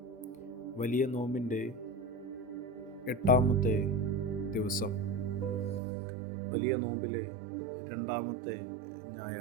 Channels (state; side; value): drops out; left; at 5.8 s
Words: വലിയ നോമ്പിൻ്റെ 8-ാമത്തെ ദിവസം, വലിയ നോമ്പിലെ 2-ാമത്തെ